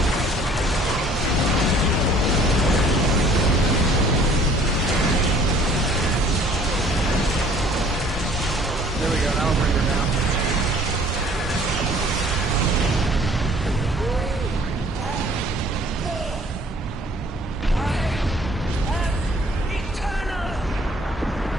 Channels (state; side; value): normal; both; correlation 0.55